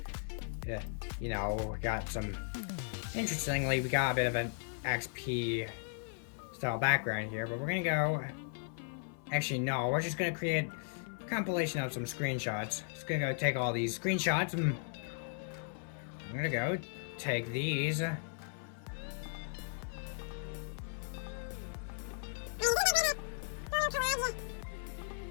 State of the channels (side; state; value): right; silent; 53 dB below the other